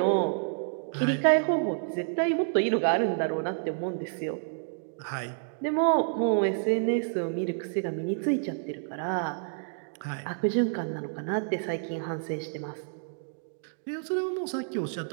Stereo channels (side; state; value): left; silent; digital silence